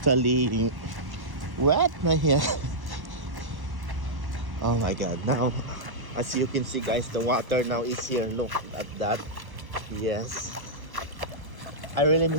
wet my hair. Oh my god, now as you can see guys, the water now is here. Look at that. Yes, I really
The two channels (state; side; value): late; left; 1.1 ms